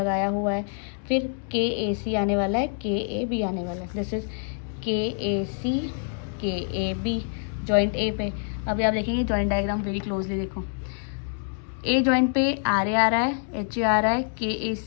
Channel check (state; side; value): silent; right; 61 dB below the other